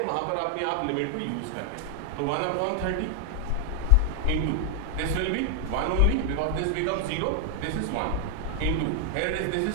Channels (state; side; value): different; both; correlation 0.00